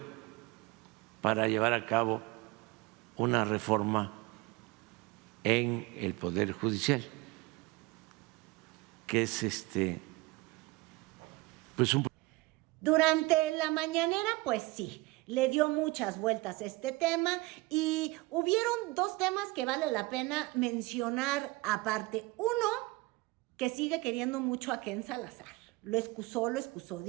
para llevar a cabo una reforma en el Poder Judicial, que es pues un... Durante la mañanera, pues sí, le dio muchas vueltas a este tema y hubieron dos temas que vale la pena mencionar aparte. Uno, que sigue queriendo mucho a Ken Salazar. Lo excusó,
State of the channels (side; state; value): left; quieter; 22.4 dB